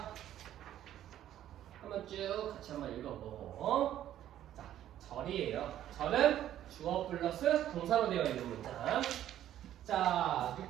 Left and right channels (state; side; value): quieter; left; 11.9 dB